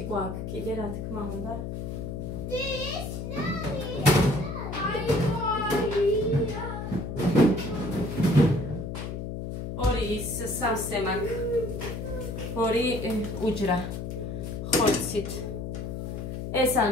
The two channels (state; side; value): noise; left; hum, 5 dB below the sound